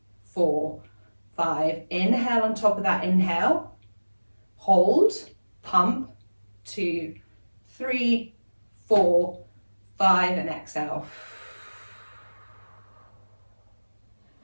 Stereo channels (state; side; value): inverted; both; correlation -1.00